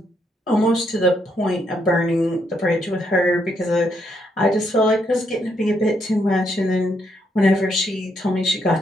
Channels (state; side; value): normal; both; correlation 0.76